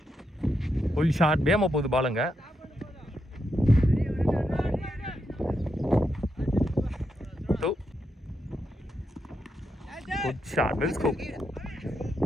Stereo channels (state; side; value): normal; both; correlation 0.83